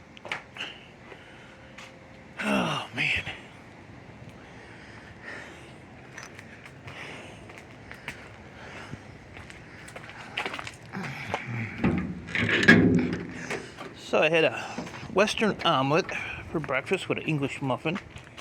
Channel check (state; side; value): identical; both; correlation 1.00